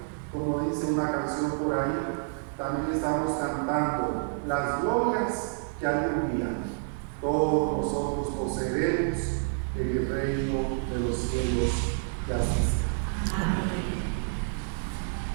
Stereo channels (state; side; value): silent; left; 59 dB below the other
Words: como dice una canción por ahí, también estamos cantando las glorias que algún día todos nosotros poseeremos en el reino de los cielos que asisten. Amén.